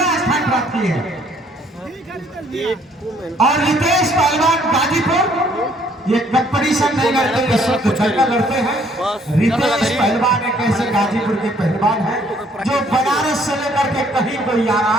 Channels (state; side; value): normal; both; correlation 0.63